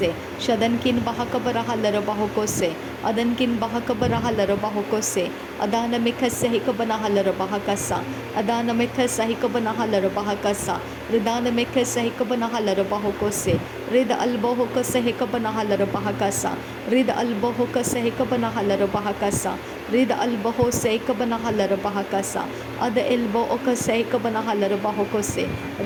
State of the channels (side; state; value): both; identical; correlation 1.00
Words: Shadankin bahakabara halara bahokose. Adankin bahakabara halara bahokose. Adana mekase hikabana halara bahakasa. Adana mekase hikabana halara bahakasa. Ridana mekase hikabana halara bahokose. Rida albohokase hikabana halara bahakasa. Rida albohokase hikabana halara bahakasa. Rida albohose hikabana halara bahakasa. Ada elbo okase hikabana halara bahokose.